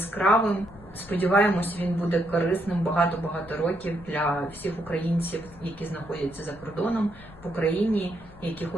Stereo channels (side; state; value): left; noise; rumble, 21 dB below the sound